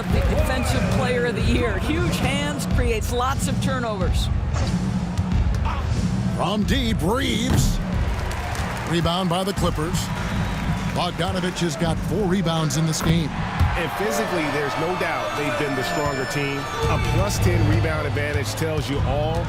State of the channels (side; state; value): both; identical; correlation 1.00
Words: the Defensive Player of the Year. Huge hands, creates lots of turnovers. From deep, Reeves. Rebound by the Clippers. Bogdanovich has got 4 rebounds in this game. And physically, there's no doubt they've been the stronger team. A +10 rebound advantage tells you all